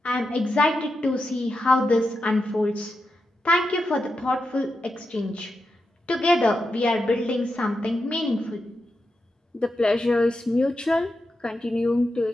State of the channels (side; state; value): both; normal; correlation 0.88